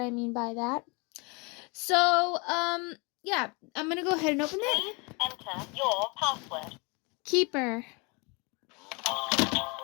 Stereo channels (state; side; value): quieter; right; 30.1 dB